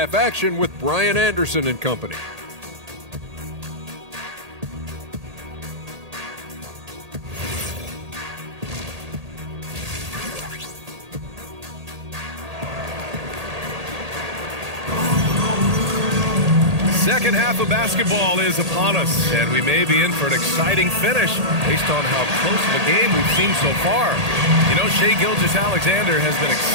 action with Brian Anderson and company. Second half of basketball is upon us, and we may be in for an exciting finish based on how close of a game we've seen so far. You know, Shai Gilgeous-Alexander has been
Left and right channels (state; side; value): late; left; 1.8 ms